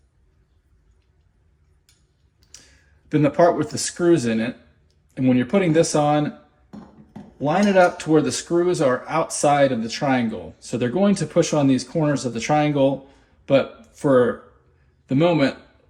then the part with the screws in it. And when you're putting this on, line it up to where the screws are outside of the triangle. So they're going to push on these corners of the triangle, but for the moment,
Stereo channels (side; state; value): both; identical; correlation 1.00